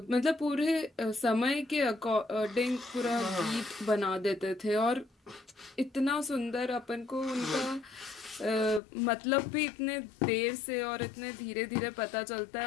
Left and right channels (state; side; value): drops out; right; at 8.8 s